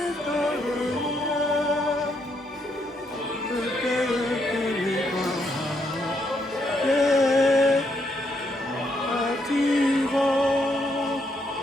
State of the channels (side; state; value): both; normal; correlation 0.76